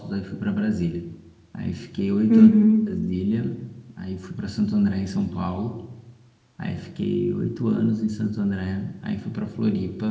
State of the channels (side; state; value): both; identical; correlation 1.00